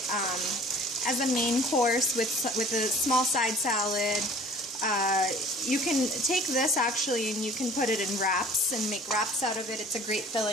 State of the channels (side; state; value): both; normal; correlation 0.49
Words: as a main course with a small side salad. You can take this actually and you can put it in wraps and make wraps out of it. It's a great